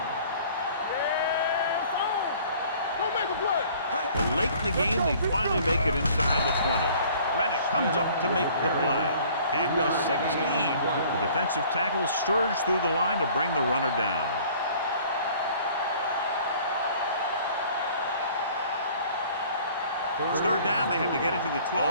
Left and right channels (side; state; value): both; inverted; correlation -0.53